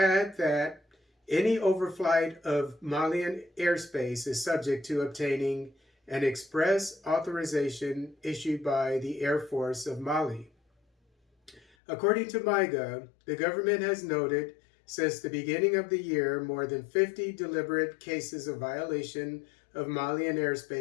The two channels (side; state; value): right; drops out; at 11.6 s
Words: that any overflight of Malian airspace is subject to obtaining an express authorization issued by the Air Force of Mali. According to Maiga, the government has noted since the beginning of the year more than 50 deliberate cases of violation of Malian